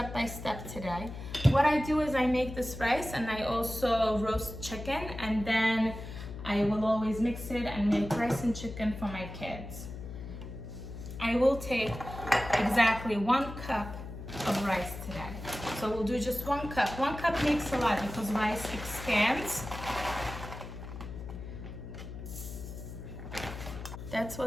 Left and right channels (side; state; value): left; noise; hum, 10 dB below the sound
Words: by step today. What I do is I make this rice and I also roast chicken, and then I will always mix it and make rice and chicken for my kids. I will take exactly 1 cup of rice today. So we'll do just 1 cup. 1 cup makes a lot because rice expands. That's